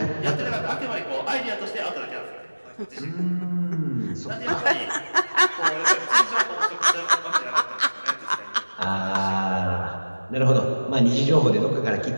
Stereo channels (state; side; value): inverted; both; correlation -1.00